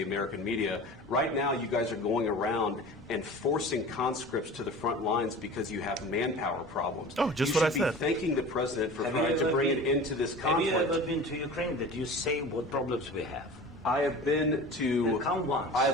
American media. Right now, you guys are going around and forcing conscripts to the front lines because you have manpower problems. Oh, just what I said. You should be thanking the president for trying to bring it into this conflict. Have you ever been to Ukraine that you say what problems we have? I have been to. Come once.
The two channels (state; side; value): normal; both; correlation 0.37